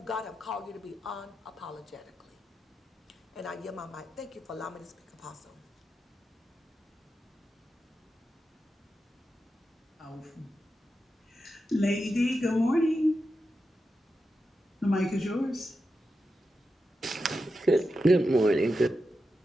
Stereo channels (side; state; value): both; normal; correlation 0.89